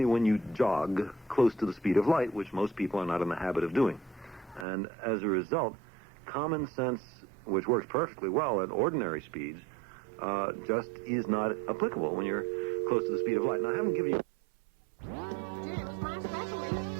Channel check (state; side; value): drops out; left; at 4.7 s